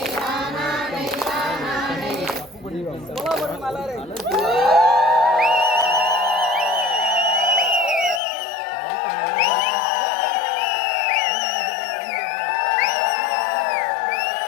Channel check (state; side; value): drops out; right; at 8.2 s